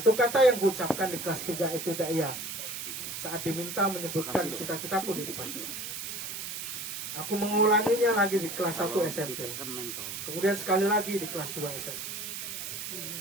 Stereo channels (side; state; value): right; noise; hiss, 6 dB below the sound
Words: kata yang kuucapkan di kelas 3 ibtidaiyah saat diminta menyebutkan cita-citaku di depan kelas. Aku mengulanginya lagi di kelas 1 SMP, kemudian sekali lagi di kelas 2 SMP.